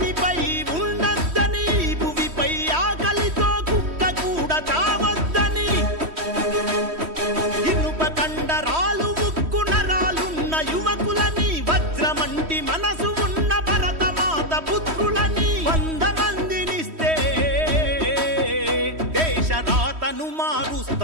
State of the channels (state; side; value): late; left; 3.1 ms